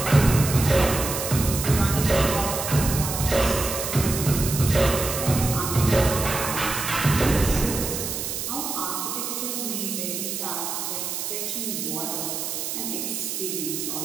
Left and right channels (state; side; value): noise; right; hiss, 4 dB below the sound